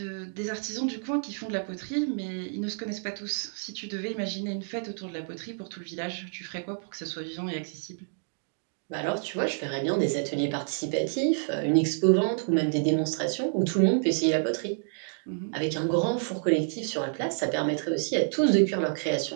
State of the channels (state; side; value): silent; left; 59 dB below the other